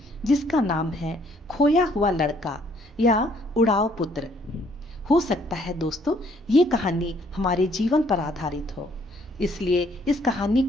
जिसका नाम है खोया हुआ लड़का या उड़ाव पुत्र। हो सकता है दोस्तों ये कहानी हमारे जीवन पर आधारित हो, इसलिए इस कहानी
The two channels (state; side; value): normal; both; correlation 0.64